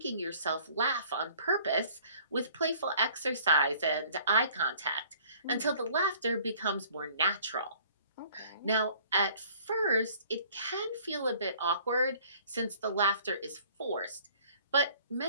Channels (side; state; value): both; inverted; correlation -0.54